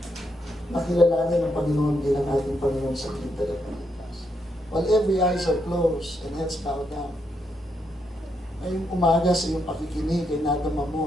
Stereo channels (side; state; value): both; normal; correlation 0.79